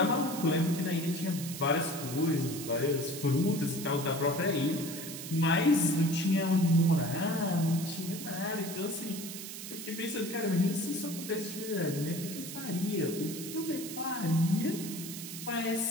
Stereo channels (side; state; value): right; noise; hiss, 9 dB below the sound